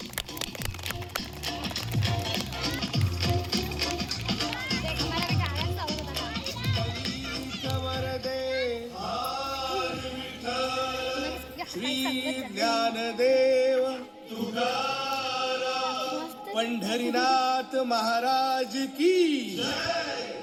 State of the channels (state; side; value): identical; both; correlation 1.00